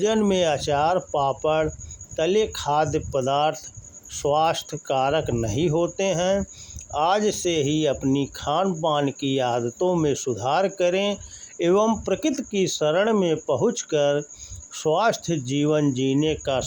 में अचार, पापड़, तले खाद्य पदार्थ स्वास्थ्य कारक नहीं होते हैं। आज से ही अपनी खान पान की आदतों में सुधार करें एवं प्रकृति की शरण में पहुंचकर स्वास्थ्य जीवन जीने का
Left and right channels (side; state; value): both; identical; correlation 1.00